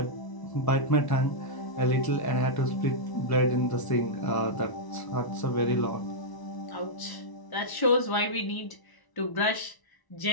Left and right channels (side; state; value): right; late; 1.0 ms